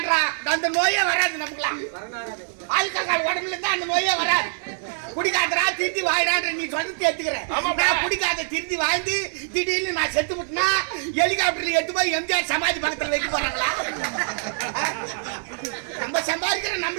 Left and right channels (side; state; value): left; silent; 59 dB below the other